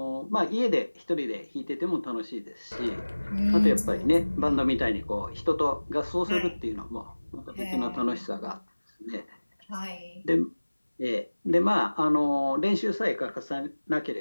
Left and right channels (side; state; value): both; inverted; correlation -1.00